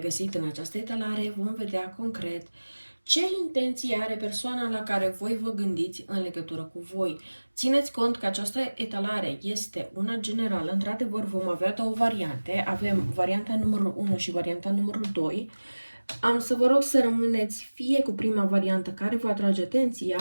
în această etalare. Vom vedea concret ce intenție are persoana la care voi vă gândiți în legătură cu voi. Țineți cont că această etalare este una generală. Într-adevăr, vom avea două variante. Avem varianta numărul 1 și varianta numărul 2. Am să vă rog să rămâneți fie cu prima variantă care vă atrage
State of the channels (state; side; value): inverted; both; correlation -1.00